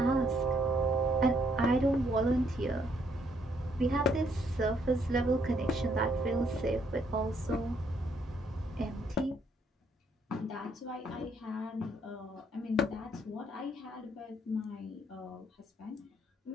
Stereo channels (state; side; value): normal; both; correlation 0.70